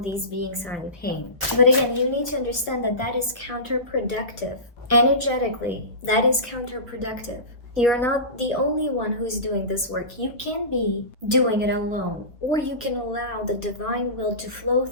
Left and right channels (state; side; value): late; right; 1.3 ms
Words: beings are in pain? But again, you need to understand that is counterproductive. Energetically, that is counterproductive. You're not the only one who's doing this work. You can be doing it alone, or you can allow the divine will to flow